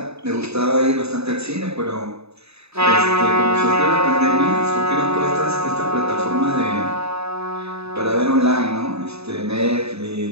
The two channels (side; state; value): left; late; 0.79 ms